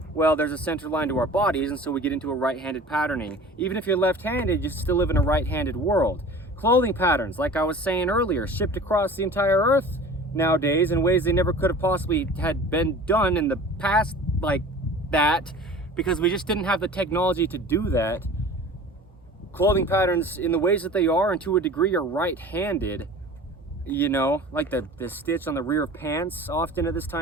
well, there's a center line to our bodies, and so we get into a right-handed patterning. Even if you're left-handed, you still live in a right-handed world. Clothing patterns, like I was saying earlier, shipped across the entire Earth nowadays in ways they never could have possibly had been done in the past like that, because we just didn't have the technology to do that. Clothing patterns in the ways that they are, and to a degree, are right-handed. You know, like the stitch on the rear of pants, often at this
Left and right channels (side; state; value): both; normal; correlation 0.41